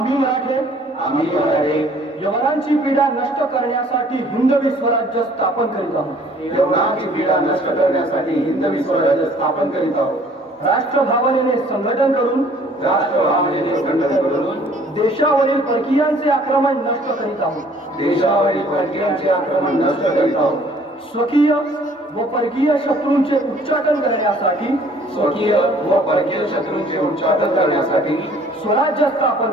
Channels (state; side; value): normal; both; correlation 0.56